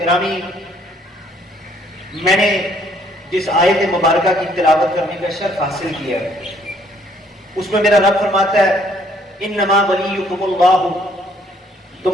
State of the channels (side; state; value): both; normal; correlation 0.64